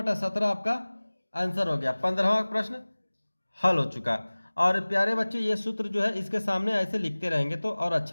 आपका आंसर हो गया। 15वां प्रश्न हल हो चुका। और प्यारे बच्चे, ये सूत्र जो है इसके सामने ऐसे लिखते रहेंगे तो और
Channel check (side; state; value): both; inverted; correlation -1.00